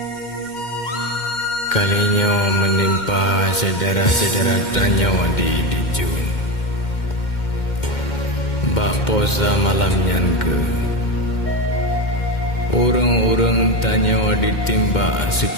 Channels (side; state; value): right; late; 2.1 ms